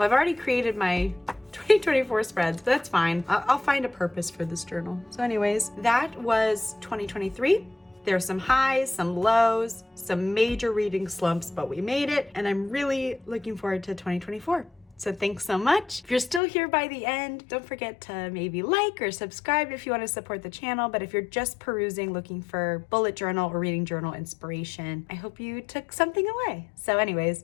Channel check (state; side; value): drops out; right; at 16.4 s